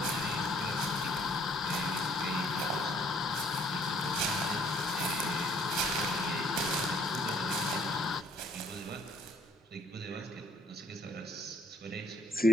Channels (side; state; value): both; normal; correlation 0.63